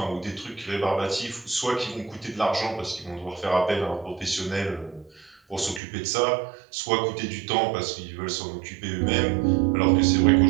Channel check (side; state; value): left; drops out; at 5.8 s